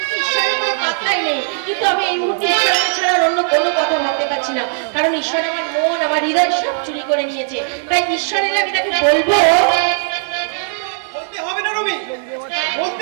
ঈশ্বরের কোনো পাত্তাই নেই। কিন্তু আমি এই মুহূর্তে ঈশ্বরকে ছাড়া অন্য কোনো কথা ভাবতে পারছি না, কারণ ঈশ্বর আমার মন আমার হৃদয় সব চুরি করে নিয়েছে। তাই ঈশ্বরের আমি তাকে বলবো। বলতে হবে না রবি,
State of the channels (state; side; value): silent; left; digital silence